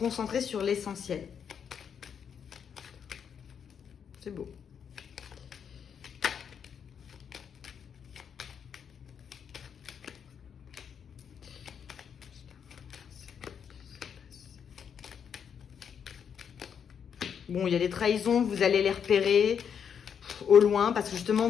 sur l'essentiel. C'est beau. Bon, il y a des trahisons, vous allez les repérer au loin parce que justement,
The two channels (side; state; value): right; quieter; 7.6 dB